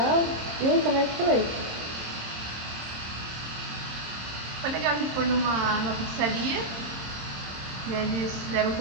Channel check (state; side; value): late; left; 26 ms